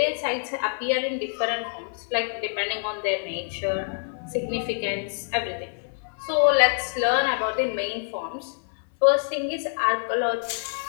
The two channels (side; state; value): right; silent; digital silence